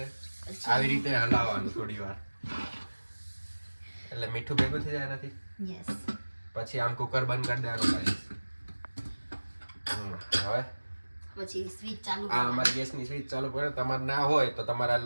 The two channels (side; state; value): both; inverted; correlation -1.00